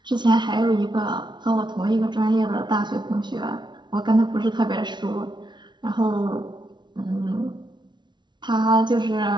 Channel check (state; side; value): late; left; 0.22 ms